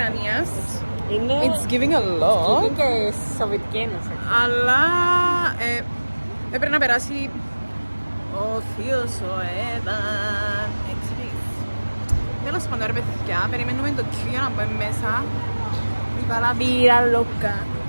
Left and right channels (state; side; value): inverted; both; correlation -1.00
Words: είναι It's giving a lot. Είναι και Σοβιετική Ένωση. Αλλά έπρεπε να περάσει ο θείος ο Έδαν. Τέλος πάντων ρε παιδιά, περιμένουμε το Q για να πάμε μέσα. Viva la vida loca.